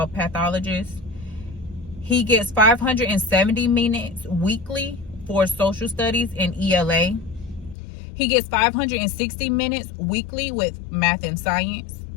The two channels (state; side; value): drops out; right; at 7.8 s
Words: He gets 570 minutes weekly for social studies and ELA. He gets 560 minutes weekly with math and science.